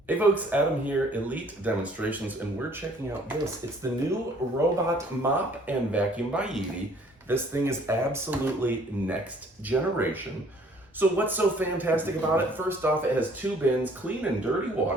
Hey folks, Adam here, Elite Demonstrations, and we're checking out this. It's the new Robot Mop and Vacuum by Yeedi. This thing is absolutely next generation. So what's so fantastic about it? First off, it has 2 bins, clean and dirty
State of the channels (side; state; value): both; normal; correlation 0.58